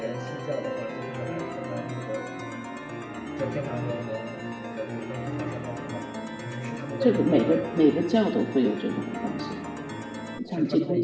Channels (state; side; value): identical; both; correlation 1.00